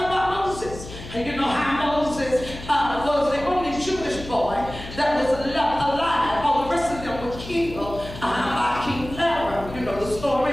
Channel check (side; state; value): left; noise; hum, 13 dB below the sound